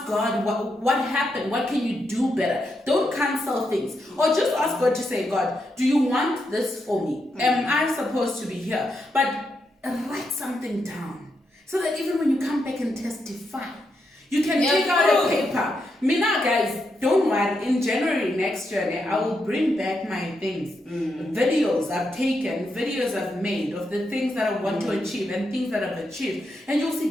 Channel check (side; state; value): both; normal; correlation 0.83